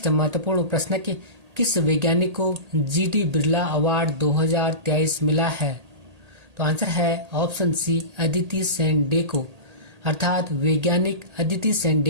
महत्वपूर्ण प्रश्न कि किस वैज्ञानिक को जीडी बिरला अवार्ड 2023 मिला है? तो आंसर है ऑप्शन सी, अदिति सेन डे को। अर्थात वैज्ञानिक अदिति सेन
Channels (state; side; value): late; left; 1.8 ms